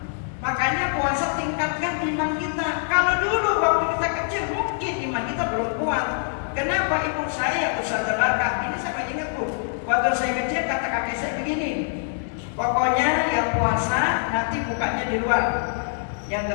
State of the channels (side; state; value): right; silent; digital silence